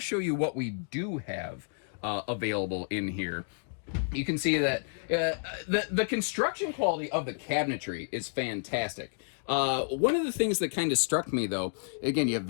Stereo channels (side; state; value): right; silent; digital silence